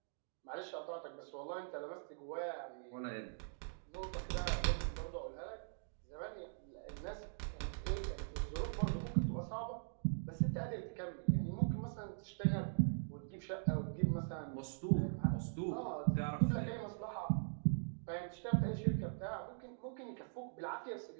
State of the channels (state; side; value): silent; left; digital silence